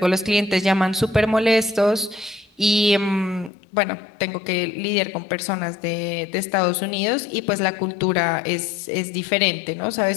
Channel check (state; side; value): drops out; right; at 3.5 s